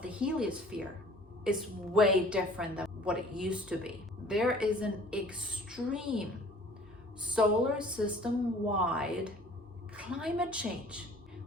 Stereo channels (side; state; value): both; normal; correlation 0.50